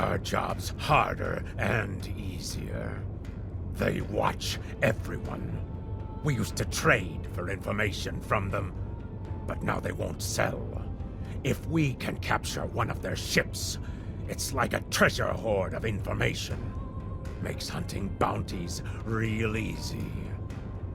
jobs harder and easier. They watch everyone. We used to trade for information from them, but now they won't sell. If we can capture one of their ships, it's like a treasure hoard of information. Makes hunting bounties real easy.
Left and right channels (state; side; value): identical; both; correlation 1.00